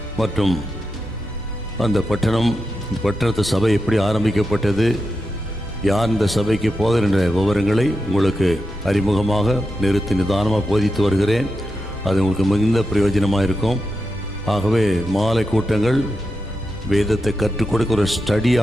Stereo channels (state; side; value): normal; both; correlation 0.88